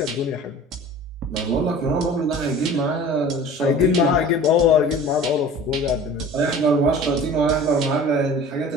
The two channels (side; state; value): both; normal; correlation 0.42